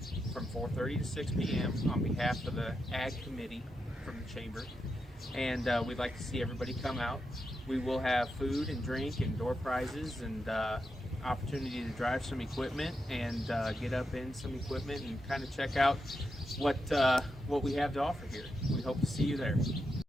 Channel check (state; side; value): normal; both; correlation 0.86